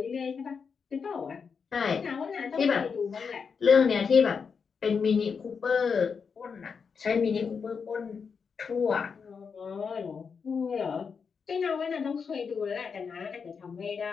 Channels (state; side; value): quieter; right; 5.9 dB